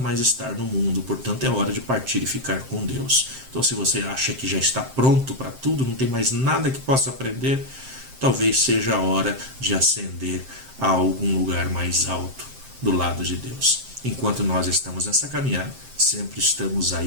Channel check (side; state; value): left; late; 7.6 ms